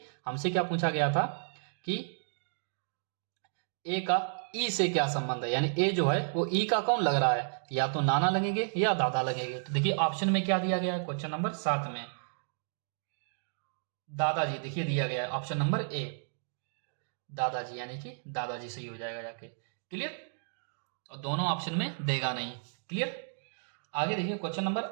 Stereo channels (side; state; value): left; silent; digital silence